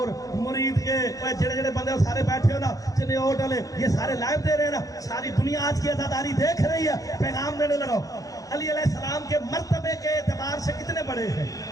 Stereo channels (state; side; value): late; right; 0.17 ms